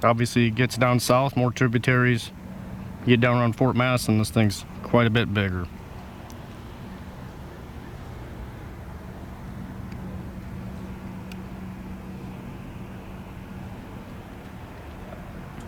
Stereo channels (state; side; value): identical; both; correlation 1.00